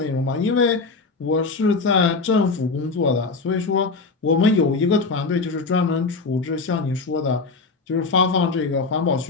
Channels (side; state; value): right; quieter; 4.1 dB